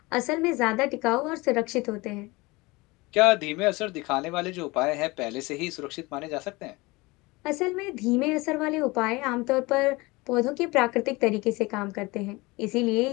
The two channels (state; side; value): quieter; right; 23.2 dB